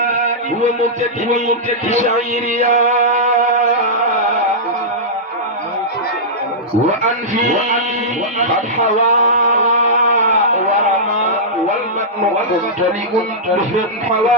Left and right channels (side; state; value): both; normal; correlation -0.13